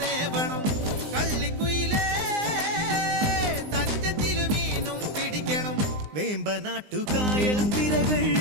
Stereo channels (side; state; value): left; late; 19 ms